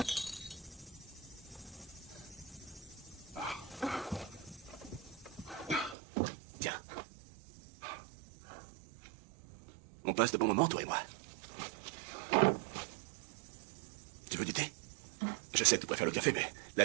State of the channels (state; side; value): drops out; left; at 6.0 s